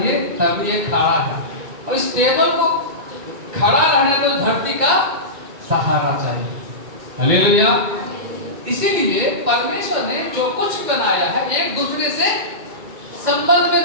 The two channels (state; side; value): late; left; 2.1 ms